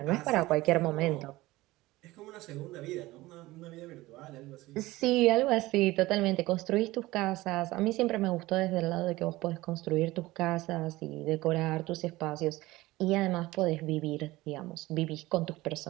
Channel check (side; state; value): left; quieter; 18.8 dB